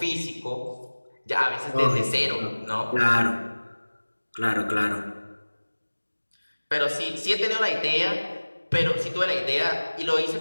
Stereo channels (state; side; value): inverted; both; correlation -1.00